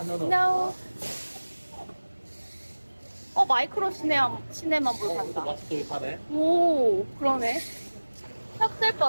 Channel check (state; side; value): inverted; both; correlation -1.00